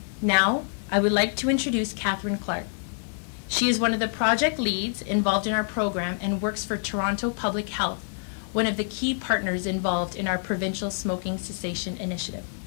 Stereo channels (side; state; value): right; silent; digital silence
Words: Now, I would like to introduce Catherine Clark. She is one of the project leads involved in our program and works for Toronto Public Health, one of the key partners involved in our provincial smoking cessation initiative.